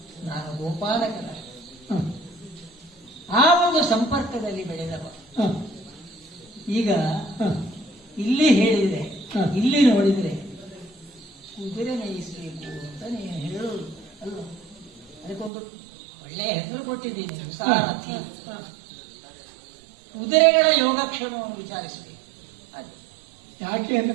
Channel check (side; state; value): left; drops out; at 15.5 s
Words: ನಾನು ಗೋಪಾಲಕನ ಹ, ಆ ಒಂದು ಸಂಪರ್ಕದಲ್ಲಿ ಬೆಳೆದವ. ಹ, ಈಗ ಹ, ಇಲ್ಲಿ ಹೇಳಿದ್ರೆ, ಹ. ಇಲ್ಲಿ ನೋಡಿದ್ರೆ ಕುದುರೆ ಮೇಯಿಸಬೇಕು ಅಂತ ನೀನು ಹೇಳೋದು ಅಲ್ವ? ಅದಕ್ಕೊಂದು ಒಳ್ಳೆಯ ಹೆಸರು ಕೊಟ್ಟಿದ್ದೀನಿ, ಸಾರಥಿ. ಹ. ಕುದುರೆಗಳ ಯೋಗಕ್ಷೇಮವನ್ನು ವಿಚಾರಿಸಬೇಕು. ಅದು ಯಾಕೆ